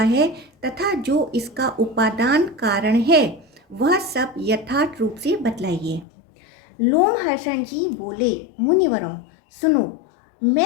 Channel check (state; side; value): drops out; right; at 6.1 s